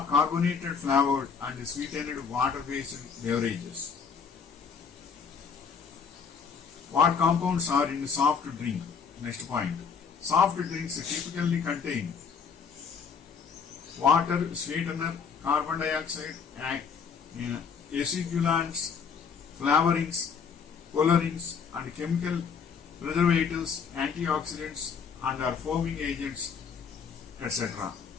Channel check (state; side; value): quieter; right; 6.2 dB